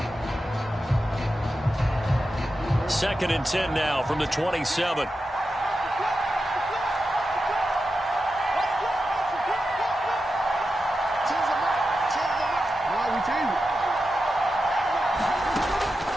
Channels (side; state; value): both; normal; correlation 0.90